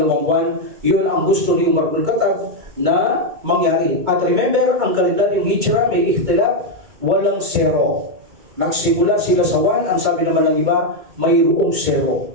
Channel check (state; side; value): late; left; 2.2 ms